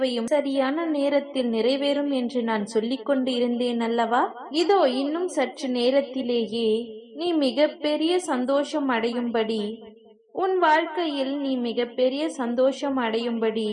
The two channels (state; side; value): identical; both; correlation 1.00